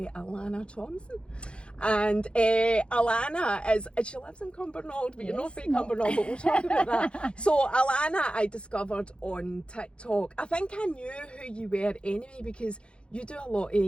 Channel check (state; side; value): late; right; 0.057 ms